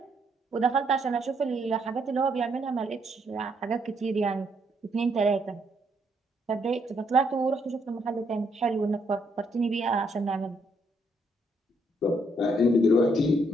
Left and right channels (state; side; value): normal; both; correlation 0.73